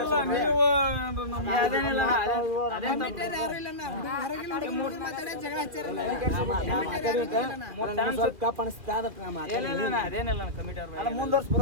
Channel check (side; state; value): left; late; 2.4 ms